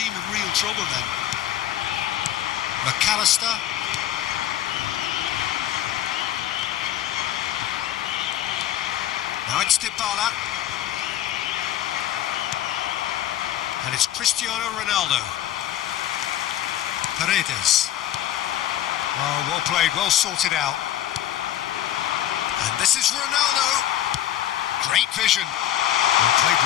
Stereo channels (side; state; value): right; quieter; 12.3 dB